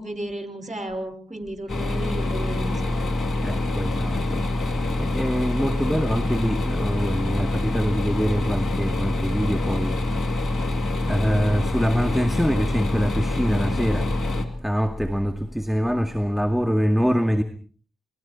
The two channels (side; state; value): both; normal; correlation 0.94